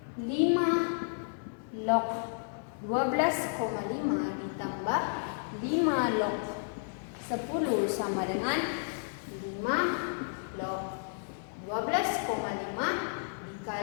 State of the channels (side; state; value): right; silent; digital silence